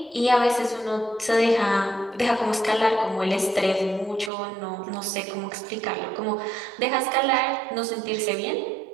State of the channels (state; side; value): drops out; left; at 4.3 s